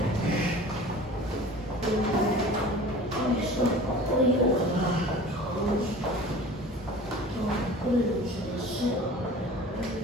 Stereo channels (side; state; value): both; normal; correlation 0.41